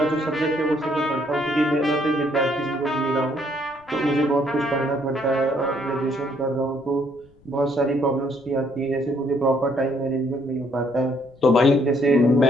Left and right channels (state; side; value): noise; left; rumble, 28 dB below the sound